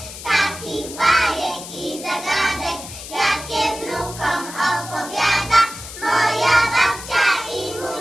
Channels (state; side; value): noise; left; hiss, 12 dB below the sound